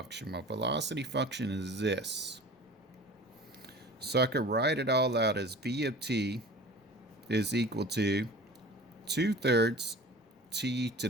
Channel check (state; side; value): normal; both; correlation 0.40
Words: My velocity function is this. So I could write it all out as v of t is equal to 2/3 t to